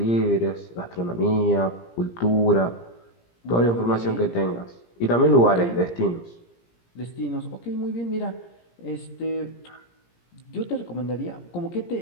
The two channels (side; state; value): right; late; 17 ms